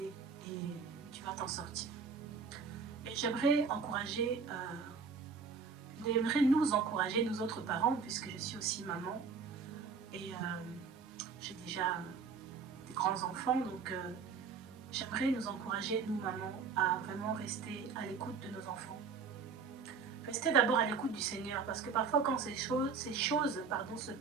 et tu vas t'en sortir. Et j'aimerais nous encourager, nous autres parents, puisque je suis aussi maman et j'ai déjà des grands-enfants, donc j'aimerais nous encourager, nous mamans, à vraiment rester à l'écoute de nos enfants. Rester d'abord à l'écoute du Seigneur, parce que parfois quand ces choses se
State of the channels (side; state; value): left; quieter; 5.5 dB